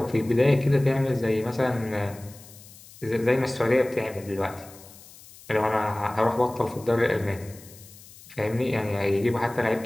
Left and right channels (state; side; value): noise; left; hiss, 21 dB below the sound